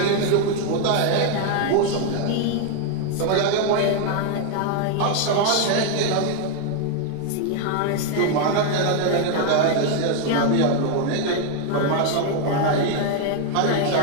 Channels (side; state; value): both; different; correlation 0.01